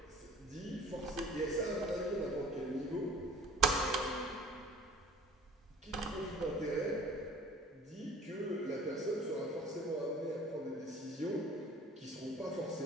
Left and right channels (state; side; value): normal; both; correlation 0.47